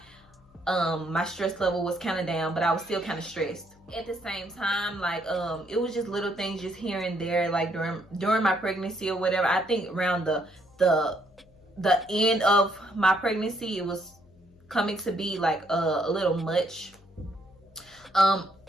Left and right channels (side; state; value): left; noise; hum, 28 dB below the sound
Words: my stress level was kind of down, but I was still kind of stressed at the same time. Like it was just little things just here and there, like during my pregnancy or whatever. I think around the end of my pregnancy, it was coming to be like a little much.